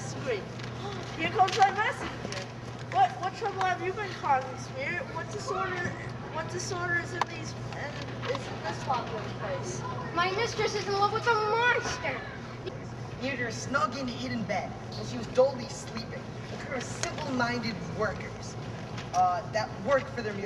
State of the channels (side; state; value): both; identical; correlation 1.00